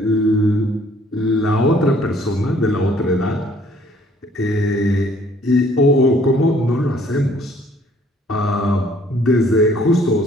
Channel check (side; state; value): both; normal; correlation 0.60